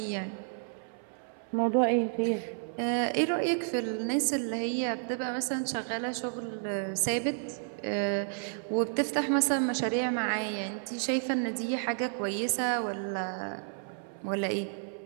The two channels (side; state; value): left; silent; 57 dB below the other